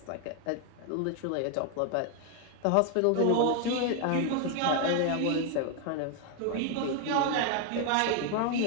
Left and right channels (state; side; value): different; both; correlation 0.01